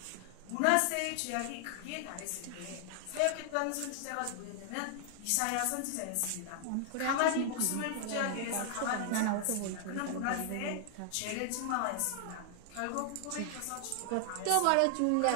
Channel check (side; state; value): both; different; correlation 0.00